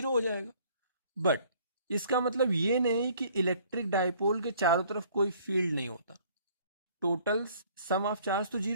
हो जाएगा. बट इसका मतलब ये नहीं कि इलेक्ट्रिक डाइपोल के चारों तरफ कोई फील्ड नहीं होता. टोटल सम ऑफ चार्ज तो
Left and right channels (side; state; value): both; inverted; correlation -0.57